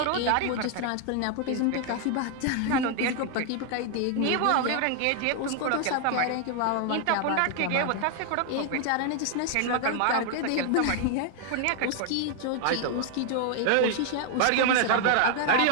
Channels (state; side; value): different; both; correlation 0.00